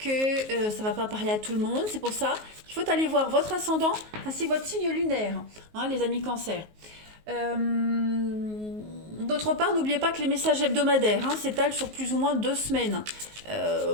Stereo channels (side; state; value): left; late; 19 ms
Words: ça ne va pas parler à tout le monde. C'est pour ça qu'il faut aller voir votre ascendant ainsi que votre signe lunaire, hein, les amis cancers. D'autre part, n'oubliez pas que les messages hebdomadaires s'étalent sur plus ou moins 2 semaines.